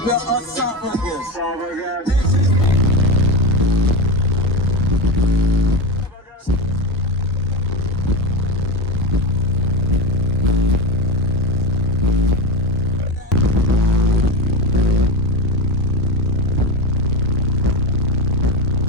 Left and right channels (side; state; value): both; normal; correlation 0.18